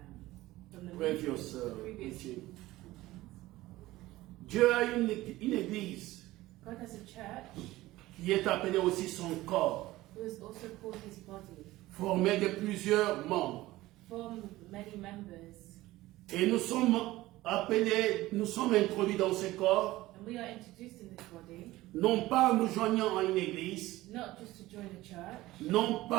previous previous, teaching, Dieu a une église God has a church qui est appelée aussi son corps, who is also called His body, formé de plusieurs membres. formed of many members, Et nous sommes appelés, nous sommes introduits dans ce corps, and we are introduced in this body non pas en nous joignant à une église, not just to join a church, non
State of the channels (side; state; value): left; quieter; 17.5 dB